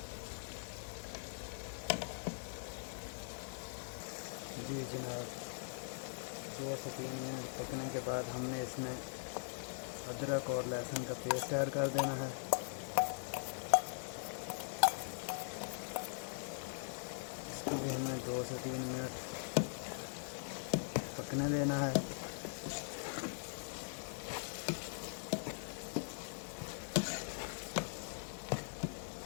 जी जनाब, 2 से 3 मिनट पकने के बाद हमने इसमें अदरक और लहसुन का पेस्ट ऐड कर देना है। इसको भी हमें 2 से 3 मिनट पकने देना है।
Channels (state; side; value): silent; right; digital silence